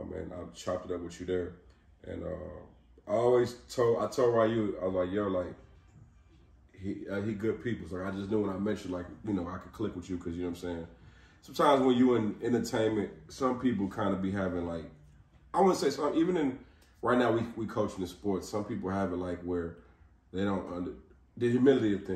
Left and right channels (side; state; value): both; identical; correlation 1.00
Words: I chopped it up with you there. And I told Ryu, I was like, yo, like, he good people. So I just knew when I mentioned, like, you know, I could click with you because, you know what I'm saying? Sometimes when you in entertainment, some people kind of be having, like, I wouldn't say some, even in, right now we coaching the sports, some people have it like where they don't, the humility of